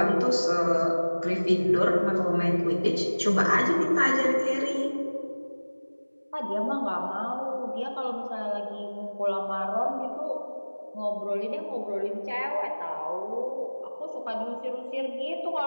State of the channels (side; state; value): both; inverted; correlation -1.00